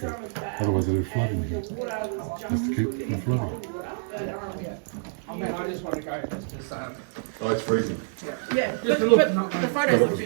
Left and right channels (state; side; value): silent; left; 60 dB below the other